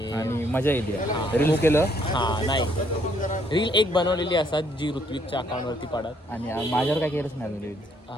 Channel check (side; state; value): both; normal; correlation 0.68